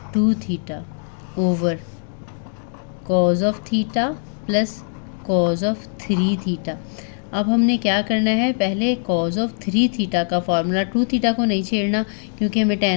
2 theta over cos of theta plus cos of 3 theta. अब हमने क्या करना है, पहले कॉज ऑफ 3 थीटा का फार्मूला, 2 थीटा को नहीं छेड़ना क्योंकि हमें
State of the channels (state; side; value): silent; right; digital silence